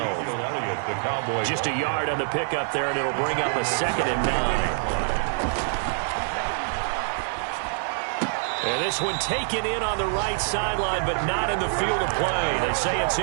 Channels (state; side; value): silent; left; 61 dB below the other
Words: Just a yard on the pickup there, and it'll bring up a 2nd and 9. And this one taken in on the right sideline, but not in the field of play. They say it's